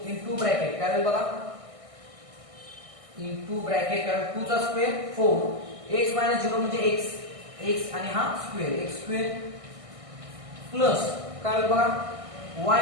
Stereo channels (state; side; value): late; left; 1.6 ms